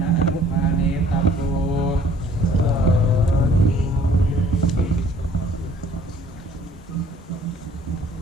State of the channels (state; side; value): normal; both; correlation 0.57